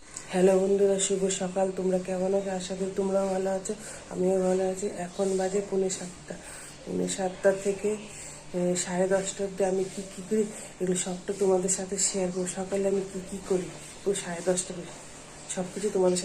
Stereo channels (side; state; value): both; identical; correlation 1.00